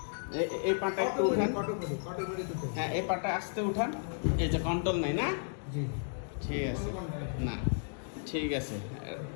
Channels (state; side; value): silent; right; digital silence